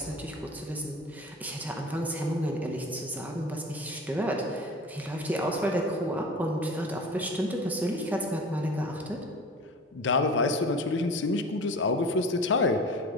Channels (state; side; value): normal; both; correlation 0.39